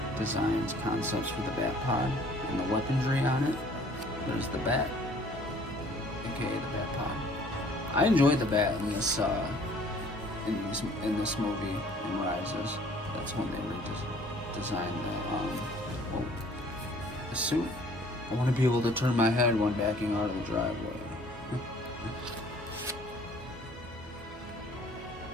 Designs, concepts for the Bat Pod, and the weaponry on it. There's the Bat, aka the Bat Pod. I enjoyed the Bat in this in this movie in Rises. That's when they redesigned Oh, the suit. I want to be able to turn my head when backing out of the driveway.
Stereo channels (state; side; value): normal; both; correlation 0.55